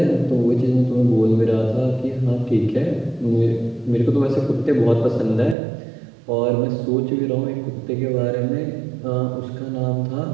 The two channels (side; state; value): left; drops out; at 5.6 s